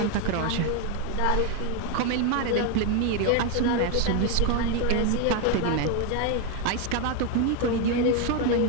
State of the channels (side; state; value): both; different; correlation 0.01